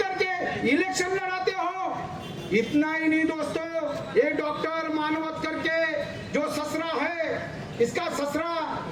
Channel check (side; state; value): both; identical; correlation 1.00